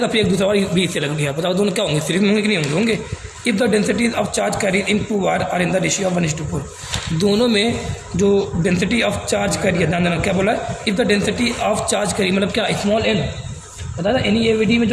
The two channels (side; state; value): both; identical; correlation 1.00